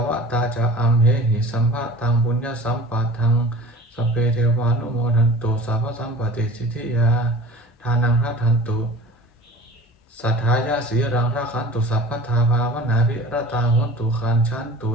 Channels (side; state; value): both; normal; correlation 0.41